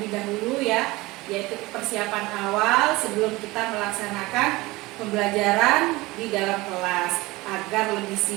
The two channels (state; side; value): quieter; left; 21.0 dB